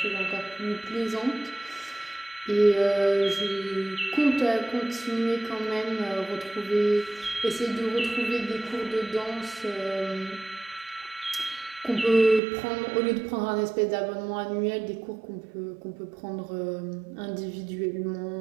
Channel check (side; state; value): left; drops out; at 12.4 s